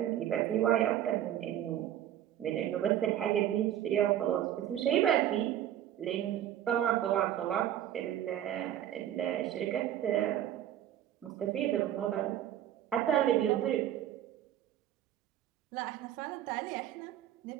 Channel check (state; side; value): quieter; left; 11.5 dB